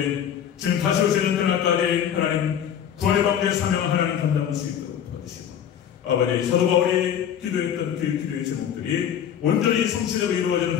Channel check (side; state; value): right; quieter; 9.2 dB